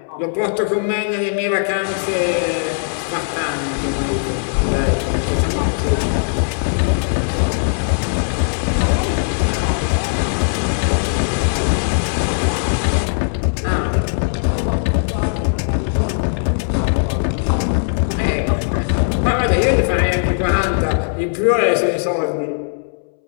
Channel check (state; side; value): silent; right; 65 dB below the other